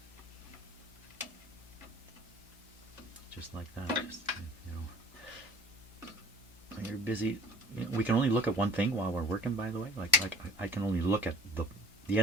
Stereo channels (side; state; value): both; normal; correlation 0.48